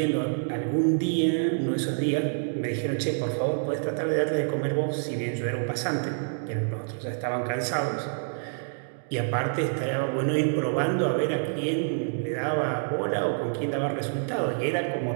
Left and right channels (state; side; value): silent; left; digital silence